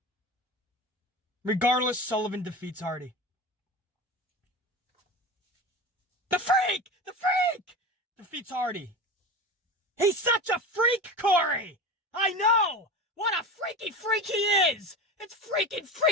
Regardless, Sullivan defeats Hardy. The freak! The freak! Defeats Hardy. He's such a freak, Corey! I know! What a freaky freak he is! It's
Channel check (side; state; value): both; normal; correlation 0.28